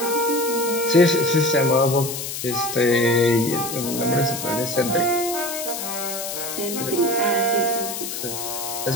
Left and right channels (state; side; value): noise; left; hiss, 6 dB below the sound